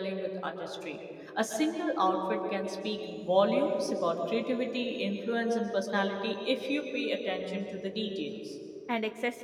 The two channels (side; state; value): both; identical; correlation 1.00